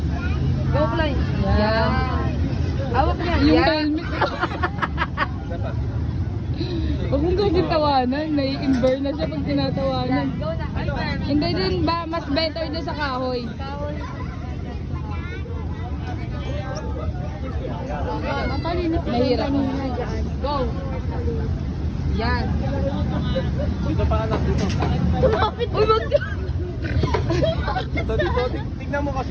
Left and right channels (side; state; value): both; identical; correlation 1.00